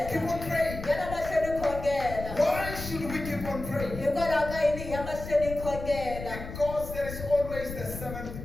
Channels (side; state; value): left; noise; rumble, 9 dB below the sound